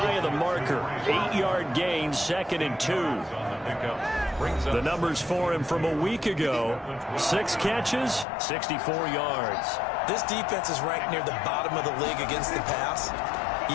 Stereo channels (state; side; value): drops out; right; at 8.2 s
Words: of the marker. 8-yard gain, 2nd and 2. The numbers for him from a week ago: 6 catches, 64 yards. This defense is ranked near the bottom of the league against the pass.